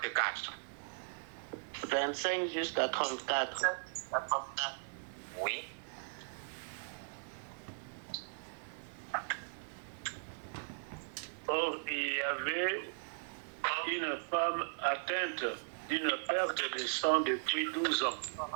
25 jusqu'à 34. Oui. Or, il y avait une femme atteinte d'une perte de sang depuis 12 ans.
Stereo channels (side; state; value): left; silent; 52 dB below the other